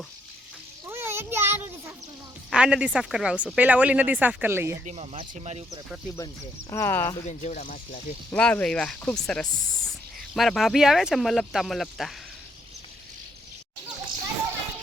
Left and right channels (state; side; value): normal; both; correlation 0.73